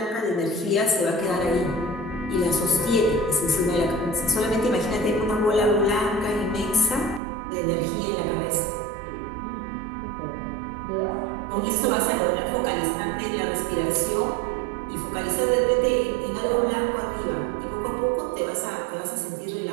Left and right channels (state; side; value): drops out; left; at 7.2 s